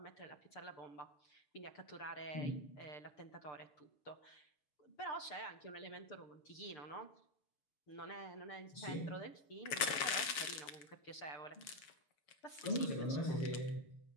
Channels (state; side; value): late; right; 7.4 ms